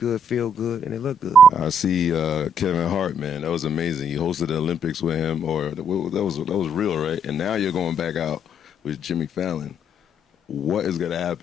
feel good, and it look good. I see Kevin Hart, man. That was amazing. You hosted the Olympics with him, or that was real, right? And now you're going back out with Jimmy Fallon. What is going to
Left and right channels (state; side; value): normal; both; correlation 0.70